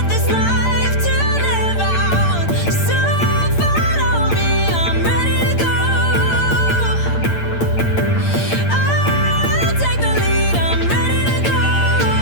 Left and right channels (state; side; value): late; right; 8.8 ms